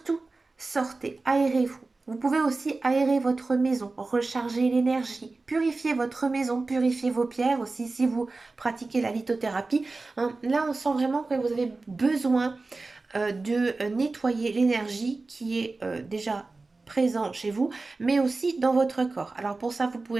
sortez, aérez-vous. Vous pouvez aussi aérer votre maison, recharger l'énergie, purifier votre maison, purifier vos pierres aussi si vous pratiquez la lithothérapie, hein. Là, on sent vraiment que vous avez besoin de nettoyer l'énergie qui est déjà présent chez vous, mais aussi dans votre corps. Alors pour ça, vous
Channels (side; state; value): left; quieter; 3.6 dB